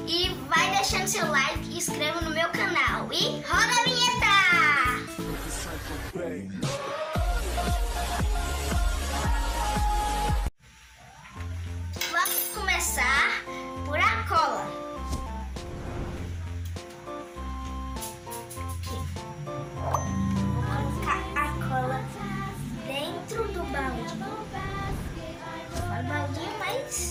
E vai deixando seu like e inscreva no meu canal. E roda a vinheta! Vamos começar por a cola. Aqui. Vou colocar a cola dentro do balde. Fala baldinho,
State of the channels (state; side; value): identical; both; correlation 1.00